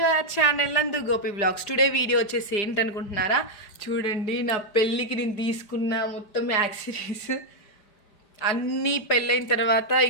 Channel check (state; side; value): late; right; 4.9 ms